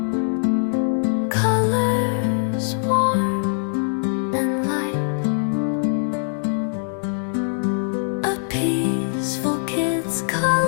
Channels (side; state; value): right; silent; digital silence